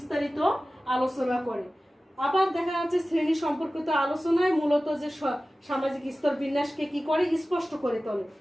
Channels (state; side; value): normal; both; correlation 0.96